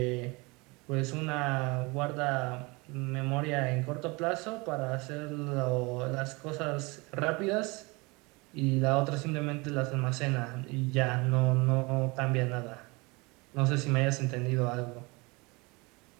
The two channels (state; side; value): quieter; left; 26.1 dB